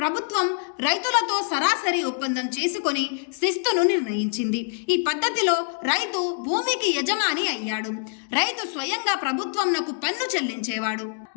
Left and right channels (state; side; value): silent; right; 59 dB below the other